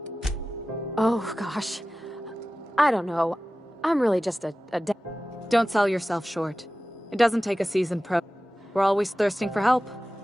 Oh, gosh. I don't know. I'm really just a Don't sell yourself short. It doesn't take a seasoned pro. We're always thirsting for help.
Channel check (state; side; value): normal; both; correlation 0.96